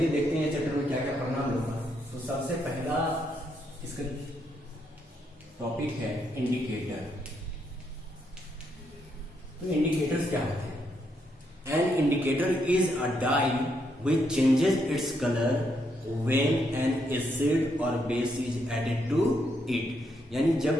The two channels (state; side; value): normal; both; correlation 0.77